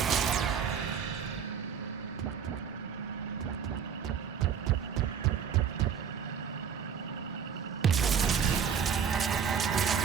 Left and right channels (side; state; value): left; quieter; 7.4 dB